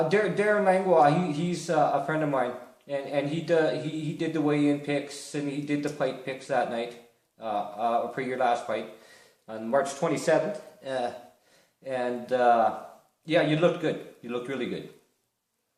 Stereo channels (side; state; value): both; identical; correlation 1.00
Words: Langlois, he's a friend of mine, and he did the weigh-in picks and he did the fight picks that night for your last fight on March 27th. Yeah, you looked good. You looked really good.